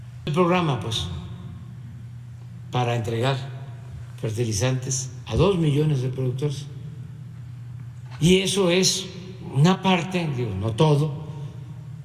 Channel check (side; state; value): both; identical; correlation 1.00